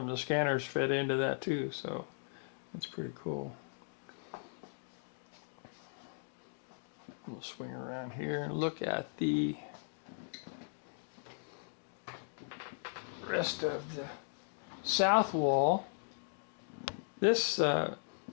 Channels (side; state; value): right; silent; digital silence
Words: the scanners fed into that too, so it's pretty cool. We'll swing around here and look at the rest of the south wall. This